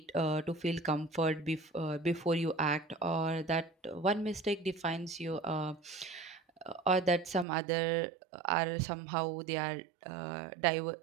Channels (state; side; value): drops out; left; at 7.5 s